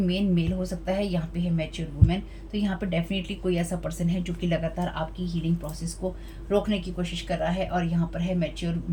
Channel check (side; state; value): both; identical; correlation 1.00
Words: हो सकता है, यहाँ पे है मैच्योर वुमेन। तो यहाँ पे डेफिनेटली कोई ऐसा पर्सन है जो कि लगातार आपकी हीलिंग प्रोसेस को रोकने की कोशिश कर रहा है, और यहाँ पर है मैच्योर